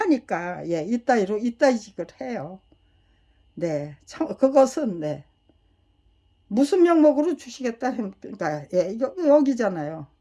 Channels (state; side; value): identical; both; correlation 1.00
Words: 이따위직을 해요. 그것은 무슨 명목으로 주시겠다 그러니까 여기잖아요.